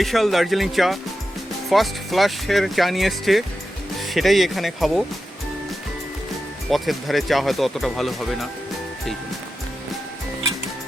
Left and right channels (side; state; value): both; normal; correlation 0.91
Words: দার্জিলিং চা, ফার্স্ট ফ্লাশের চা নিয়ে এসছে, সেটাই এখানে খাবো। পথের ধারে চা হয়তো অতটা ভালো হবে না, সেই জন্য।